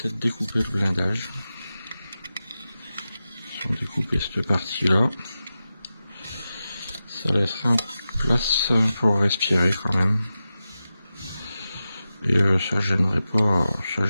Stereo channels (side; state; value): both; inverted; correlation -0.93